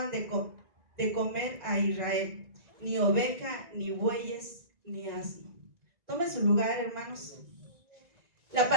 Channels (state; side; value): late; left; 1.9 ms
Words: de comer a Israel, ni oveja, ni bueyes, ni asno. Tome su lugar, hermanos. La